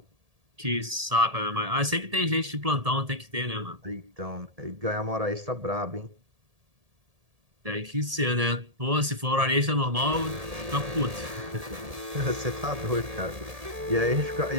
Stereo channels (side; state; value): left; late; 1.7 ms